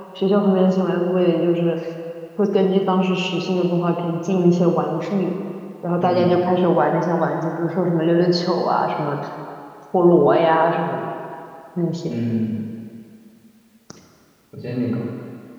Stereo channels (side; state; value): both; identical; correlation 1.00